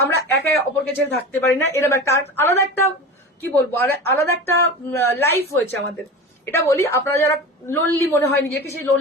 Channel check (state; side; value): normal; both; correlation 0.31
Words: আমরা একে অপরকে ছেড়ে থাকতে পারি না। এরকম একটা আলাদা একটা, কি বলবো, আলাদা একটা লাইফ হয়েছে আমাদের। এটা বলি, আপনারা যারা লোনলি মনে হয় নিজেকে, সেই